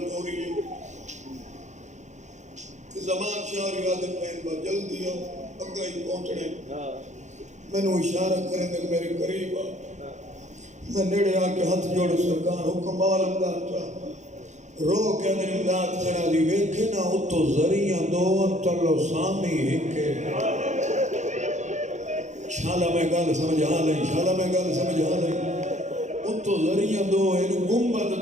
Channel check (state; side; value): late; left; 0.34 ms